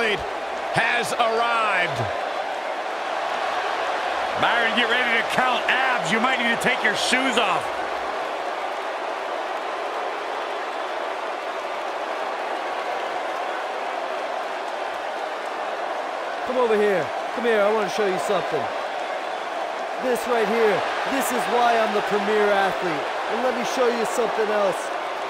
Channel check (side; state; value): both; identical; correlation 1.00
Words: has arrived. Byron, get ready to count abs. You might need to take your shoes off. Come over here. Come here, I want to show you something. This right here, this is why I'm the premier athlete. And let me show you something else.